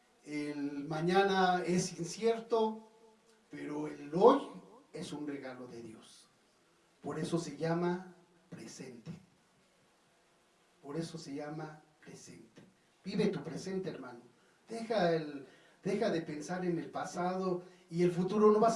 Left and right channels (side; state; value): both; identical; correlation 1.00